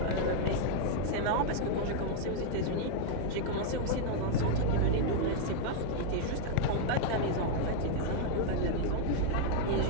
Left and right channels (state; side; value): different; both; correlation 0.00